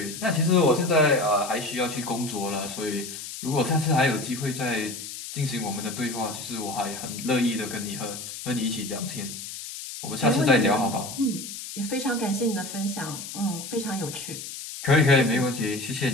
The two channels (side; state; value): left; noise; hiss, 9 dB below the sound